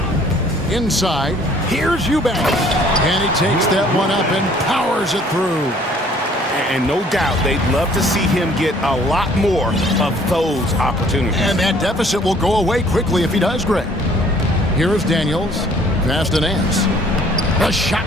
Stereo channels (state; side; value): normal; both; correlation 0.57